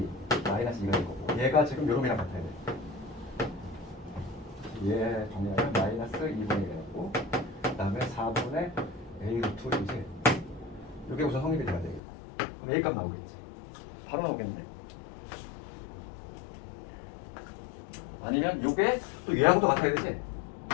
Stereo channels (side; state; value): right; drops out; at 12.0 s